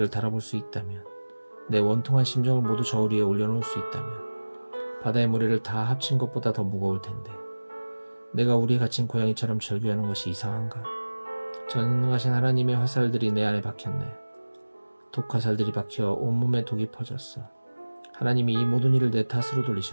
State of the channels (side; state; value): both; inverted; correlation -1.00